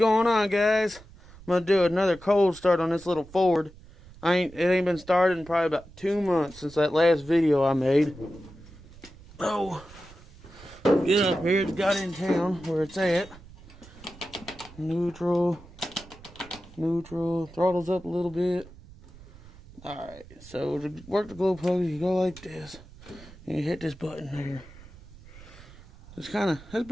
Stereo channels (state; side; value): noise; right; rumble, 20 dB below the sound